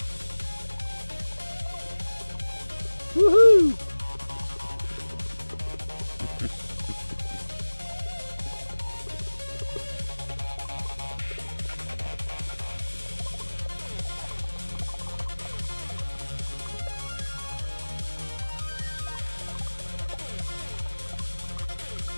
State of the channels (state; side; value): inverted; both; correlation -1.00